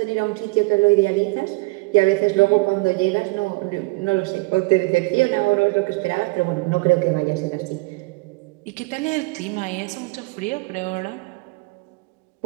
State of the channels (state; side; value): quieter; left; 25.1 dB